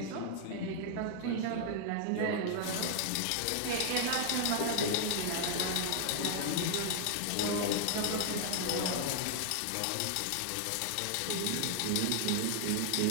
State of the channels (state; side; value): different; both; correlation 0.00